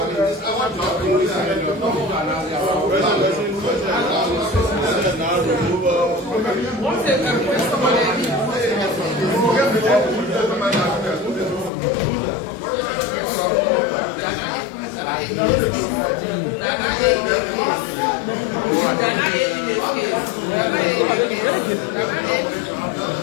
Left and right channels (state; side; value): drops out; right; at 11.7 s